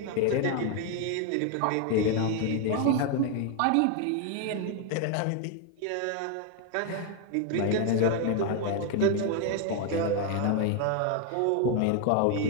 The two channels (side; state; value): both; different; correlation 0.01